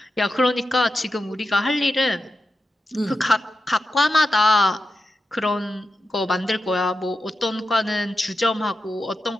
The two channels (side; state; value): both; normal; correlation 0.90